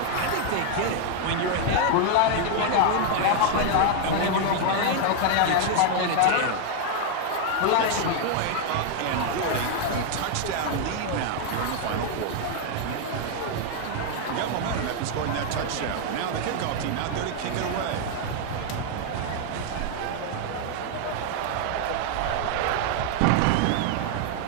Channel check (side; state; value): both; different; correlation 0.00